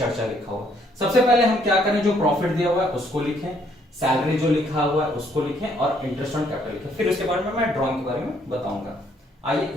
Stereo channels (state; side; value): normal; both; correlation 0.67